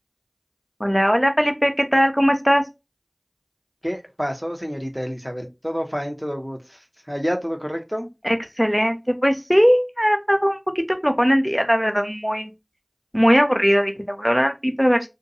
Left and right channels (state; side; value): identical; both; correlation 1.00